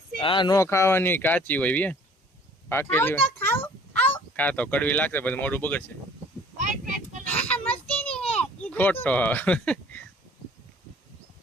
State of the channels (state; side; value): normal; both; correlation 0.53